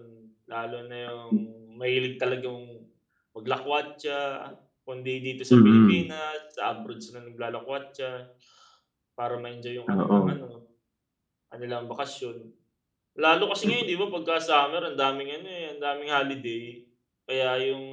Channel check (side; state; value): both; identical; correlation 1.00